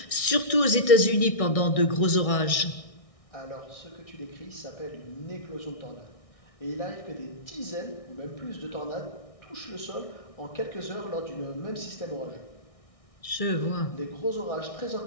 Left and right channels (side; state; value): right; late; 1.6 ms